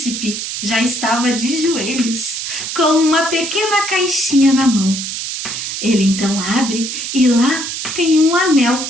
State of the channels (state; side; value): noise; right; hiss, 5 dB below the sound